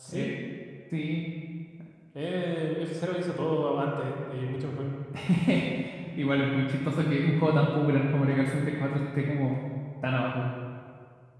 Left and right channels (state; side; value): identical; both; correlation 1.00